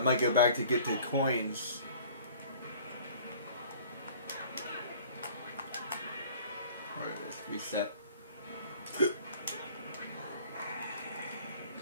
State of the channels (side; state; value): both; inverted; correlation -0.49